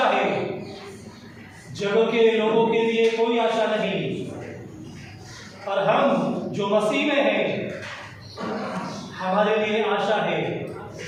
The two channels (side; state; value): both; identical; correlation 1.00